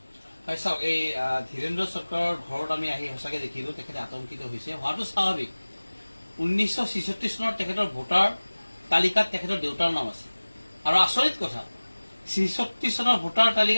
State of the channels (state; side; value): inverted; both; correlation -1.00